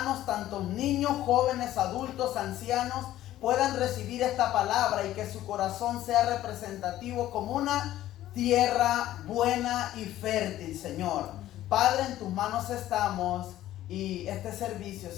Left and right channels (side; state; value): right; quieter; 13.8 dB